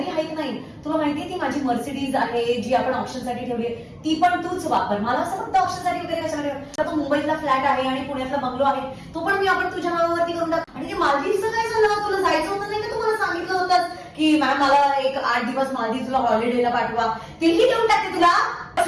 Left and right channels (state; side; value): identical; both; correlation 1.00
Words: हाईक नाही, तुला माहितीये ती माझी मर्सिडीज आहे जी आपण ऑप्शन साठी ठेवली आहे, ती पण तूच वापर. मला असं फक्त ऑप्शन साठी वगैरे कशाला ठेव. तो मुंबईतला फ्लॅट आहे आणि पुण्यातला बंगलो आहे, तो पण मी आपण तुझ्या नावावरती करून टाक. आणि ते मालदीवचं काय झालं, तुला जायचं होतं नाही का? तुम्हाला सांगितलं होतं की मॅम मला एक 8 दिवस मालदीवला हॉलिडेला पाठवा, तेही देऊन टाकते तुला.